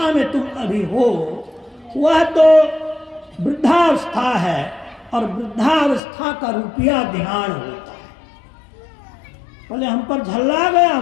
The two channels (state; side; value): drops out; right; at 6.0 s